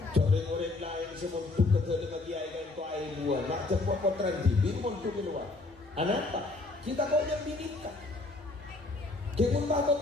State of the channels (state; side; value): quieter; right; 3.3 dB